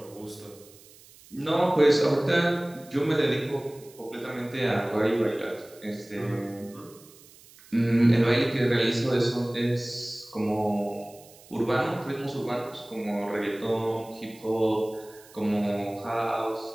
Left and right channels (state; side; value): noise; right; hiss, 23 dB below the sound